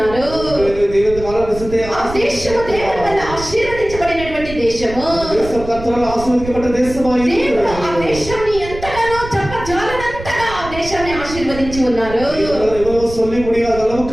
దేవుని కానాను దేశത്തെ ఆ దేశము దేవుని వల్ల ఆశీర్వదించబడినటువంటి దేశము. దేశం కర్తరాல் ఆశీర్వదించబడ్డ దేశమాయి. దేవుడు ఆ దేశాన్ని ఎంతగానో చెప్పజాలనంతగా ఆ దేశాన్ని ఆశీర్వదించి ఉన్నారు. ఎవరో சொல்லி முடியாத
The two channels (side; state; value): right; noise; rumble, 11 dB below the sound